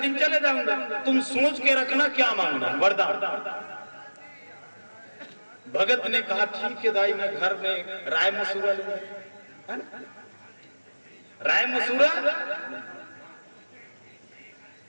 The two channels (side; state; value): both; inverted; correlation -1.00